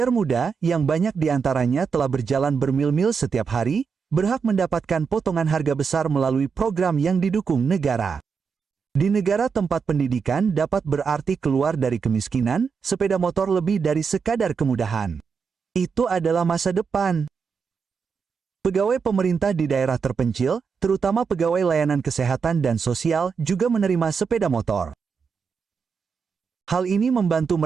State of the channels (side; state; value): left; quieter; 5.8 dB